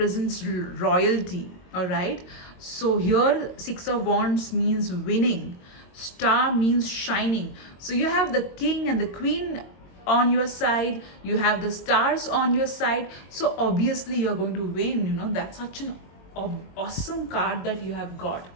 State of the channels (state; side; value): late; right; 22 ms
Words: royalty. All right, so here 6 of wands means winning, star means shining. So you have the king and the queen on your side, you have the stars on your side, so obviously you're going to win. That's such an awesome card that you have got.